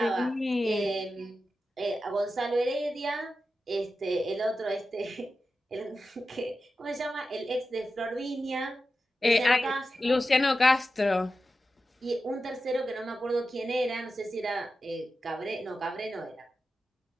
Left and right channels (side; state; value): both; normal; correlation 0.92